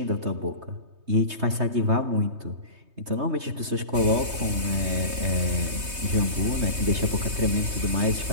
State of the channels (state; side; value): late; left; 3.2 ms